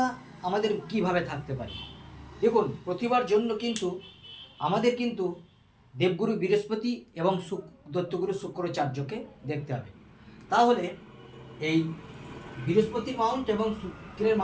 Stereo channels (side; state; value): both; identical; correlation 1.00